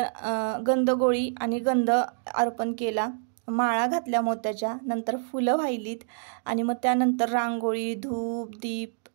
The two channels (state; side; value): silent; left; digital silence